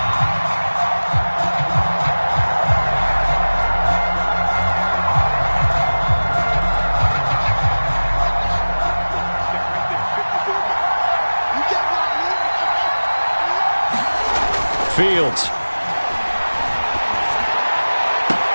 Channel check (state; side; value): inverted; both; correlation -1.00